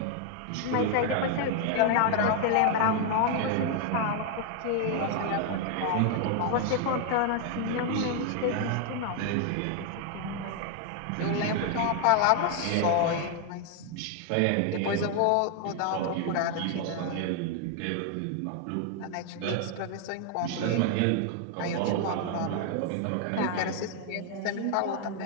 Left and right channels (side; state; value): both; different; correlation 0.00